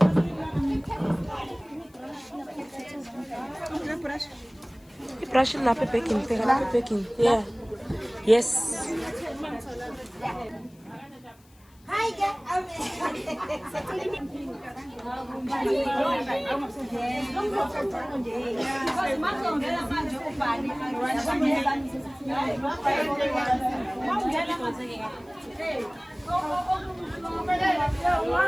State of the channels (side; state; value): left; noise; hiss, 30 dB below the sound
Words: Brush it lapha baking. Yeah. Yes. Hi